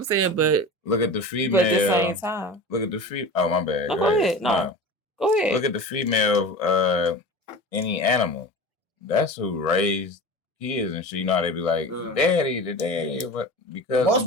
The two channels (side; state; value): both; normal; correlation 0.33